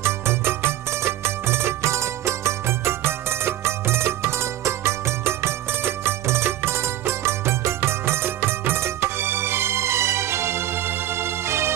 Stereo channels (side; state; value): left; quieter; 13.2 dB